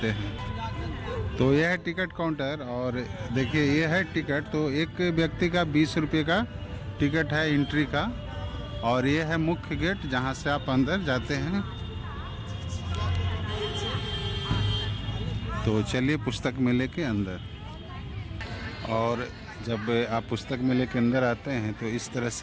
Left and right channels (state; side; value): identical; both; correlation 1.00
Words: हैं। तो यह है टिकट काउंटर और देखिए यह है टिकट। तो एक व्यक्ति का 20 रुपये का टिकट है एंट्री का और यह है मुख्य गेट जहां से आप अंदर जाते हैं। तो चलिए पुस्तक मेले के अंदर। और जब आप पुस्तक मेले के अंदर आते हैं तो इस तरह